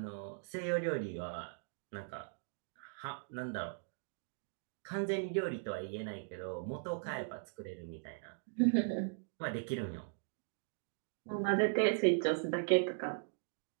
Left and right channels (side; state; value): left; silent; digital silence